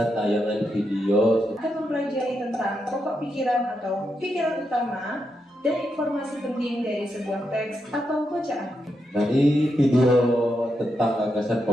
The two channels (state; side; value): normal; both; correlation 0.84